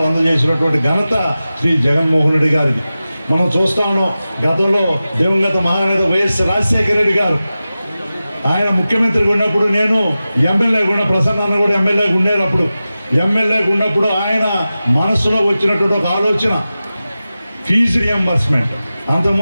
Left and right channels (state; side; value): inverted; both; correlation -0.95